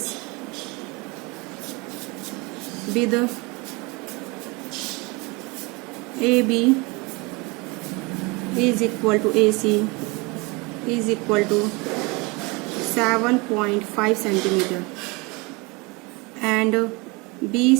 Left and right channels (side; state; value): left; quieter; 26.8 dB